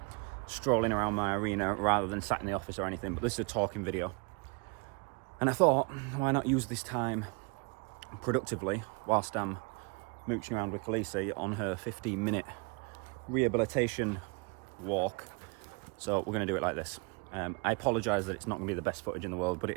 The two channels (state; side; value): quieter; left; 31.7 dB